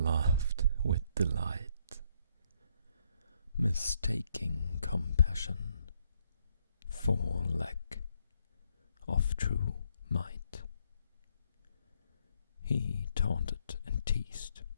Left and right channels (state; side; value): inverted; both; correlation -0.72